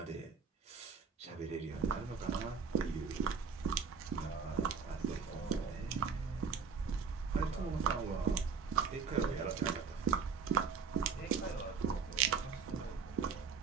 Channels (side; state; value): left; quieter; 5.8 dB